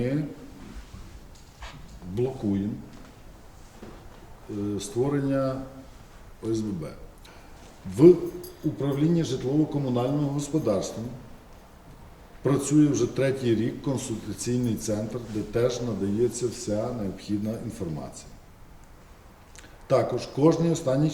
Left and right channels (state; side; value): identical; both; correlation 1.00